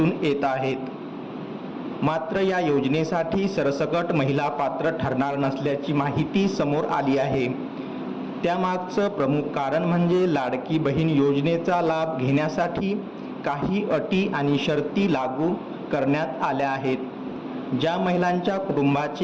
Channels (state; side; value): identical; both; correlation 1.00